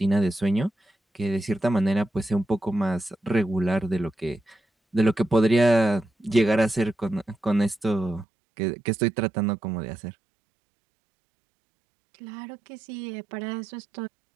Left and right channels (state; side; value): drops out; left; at 8.2 s